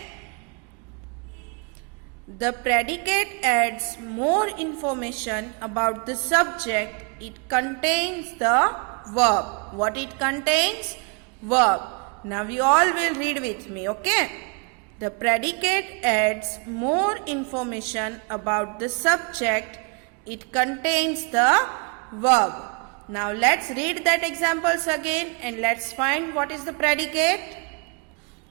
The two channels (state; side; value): quieter; left; 34.9 dB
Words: The predicate adds more information about the subject. It contains the verb. What it contains? Verb. Now you all will read with me, okay? The predicate adds more information about the subject. It contains the verb. Now let's read that examples again and let's find what is the predicate.